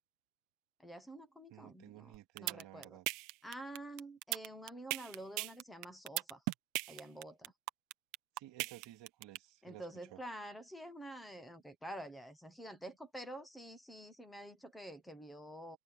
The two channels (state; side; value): quieter; left; 7.5 dB